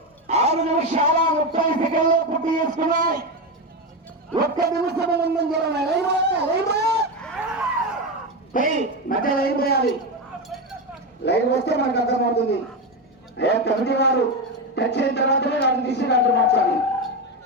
6 నిమిషాల 30 సెకండ్లు పూర్తి చేసుకున్నాయి. 1 నిమిషం ముందంజలో మధ్య లైన్ పోయాలి. లైన్ వస్తే మనకు అర్థమవుతుంది. అయ్యా కమిటీ వారు టచ్ అయిన తర్వాతనే దాన్ని తీసి దాంట్లో మార్చాలి.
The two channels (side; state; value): both; normal; correlation 0.14